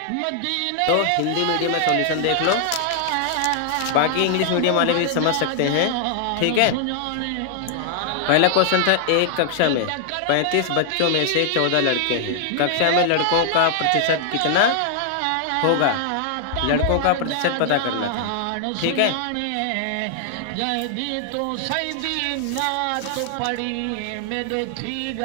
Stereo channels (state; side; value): different; both; correlation 0.00